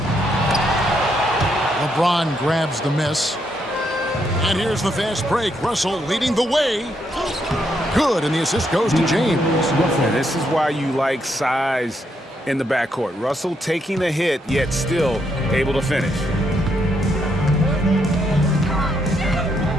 LeBron grabs the miss. And here's the fast break. Russell leading the way. Good, and the assist goes to James. And this is why you like size in the backcourt. Russell taking a hit, yet still able to finish.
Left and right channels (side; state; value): both; normal; correlation 0.77